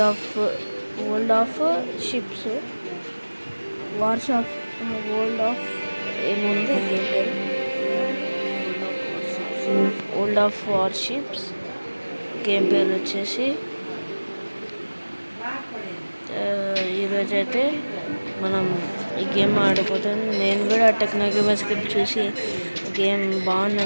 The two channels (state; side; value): inverted; both; correlation -1.00